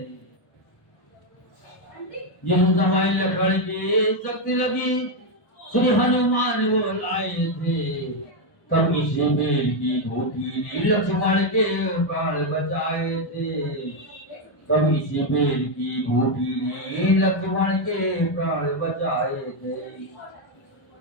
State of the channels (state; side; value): late; right; 1.1 ms